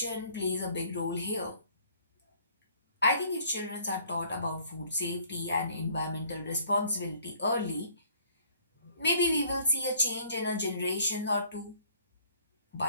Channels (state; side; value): inverted; both; correlation -0.59